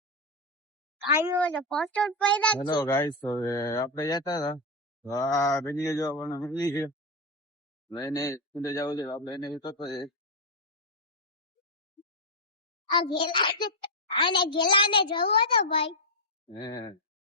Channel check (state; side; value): normal; both; correlation 0.04